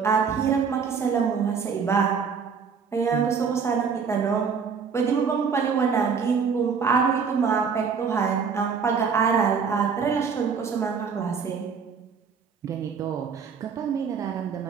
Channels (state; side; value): quieter; left; 6.0 dB